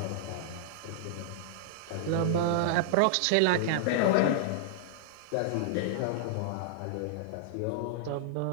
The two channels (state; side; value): different; both; correlation -0.01